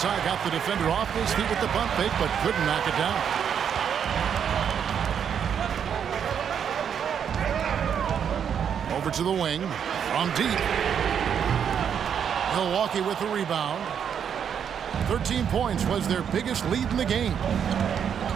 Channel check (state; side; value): quieter; left; 8.0 dB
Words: Got the defender off his feet with the pump fake, but couldn't knock it down. Over to the wing. From deep. Milwaukee with the rebound. 13 points was their biggest lead in the game.